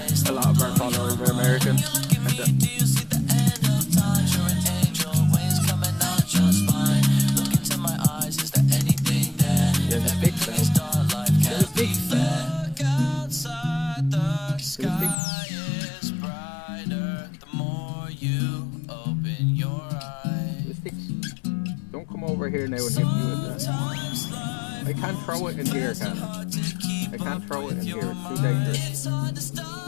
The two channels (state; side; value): drops out; right; at 15.2 s